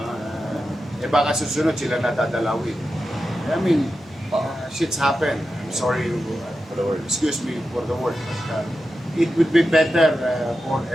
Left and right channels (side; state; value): both; normal; correlation 0.90